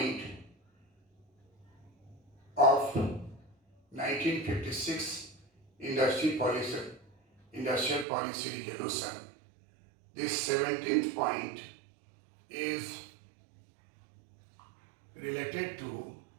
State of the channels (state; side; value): drops out; left; at 8.1 s